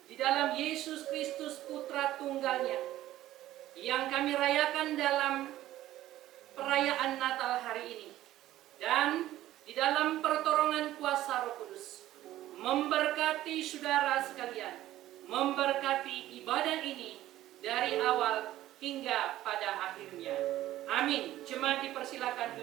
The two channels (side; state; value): left; quieter; 14.4 dB